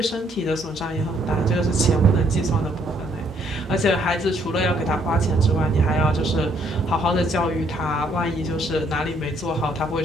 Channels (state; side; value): normal; both; correlation 0.68